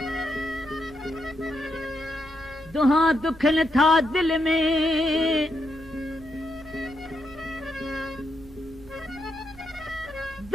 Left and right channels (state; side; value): normal; both; correlation 0.80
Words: दुहा दुखन था दिल में